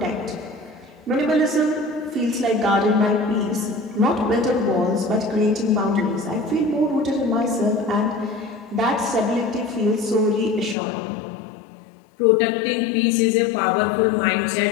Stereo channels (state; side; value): drops out; right; at 10.8 s